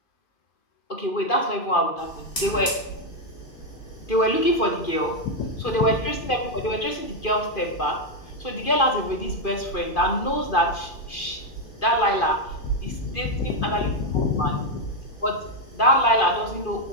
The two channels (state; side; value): late; right; 2.5 ms